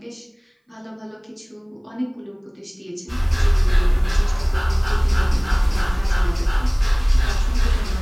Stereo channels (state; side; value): identical; both; correlation 1.00